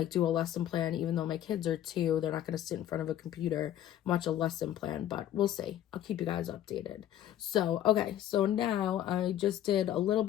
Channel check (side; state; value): right; quieter; 11.8 dB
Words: do a lesson plan, even though my kids are 2, they're not going to sit in front of a computer and watch a lesson plan, but we'll see. I'll keep you guys updated. So, okay, so now I just did a little